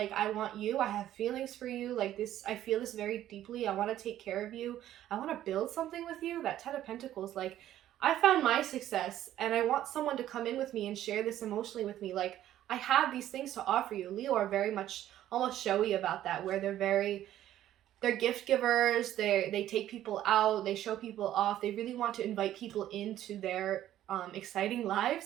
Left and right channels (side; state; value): left; quieter; 12.5 dB